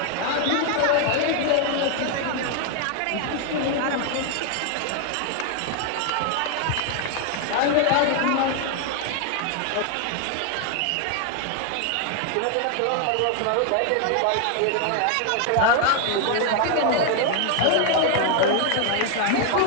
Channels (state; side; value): different; both; correlation 0.00